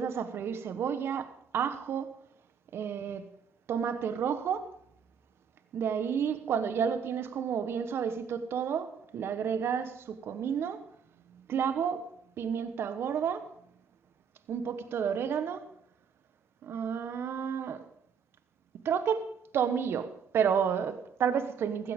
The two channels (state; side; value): quieter; left; 7.2 dB